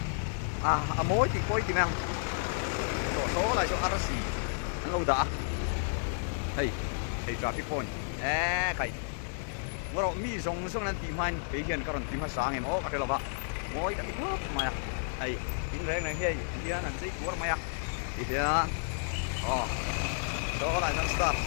moi thì coi thì mang số lại số RC anh lâu đã hey traffic point cái ngồi đó mi giống xong nên tìm anh cái hiện cái tìm hết sáng em cái là vậy moi cái hấp mà hey tính rèn này hey kia anh thấy của mày thì số lại sang start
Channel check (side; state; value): right; silent; digital silence